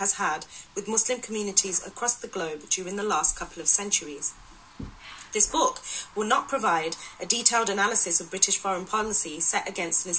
had with Muslim communities across the globe during the last couple of centuries. This book will not provide a detailed analysis of British foreign policy set against an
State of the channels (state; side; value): identical; both; correlation 1.00